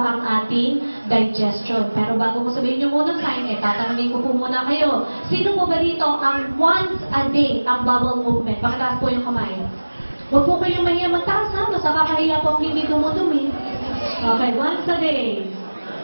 ang ating digestion. Pero bago ko sabihin yung unang sign, tatanungin ko po muna kayo. Sino po ba dito ang once a day ang bowel movement? Pakitaas po yung kamay. Huwag po kayong mahiya magtaas, ha? Mas nakakahiya po ang hindi dumudumi. Okay, once a day.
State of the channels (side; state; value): both; inverted; correlation -1.00